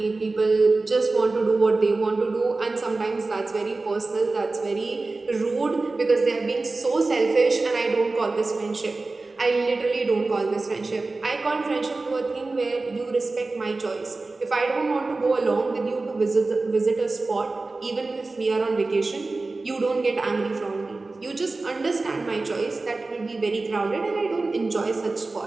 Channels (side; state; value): left; quieter; 3.4 dB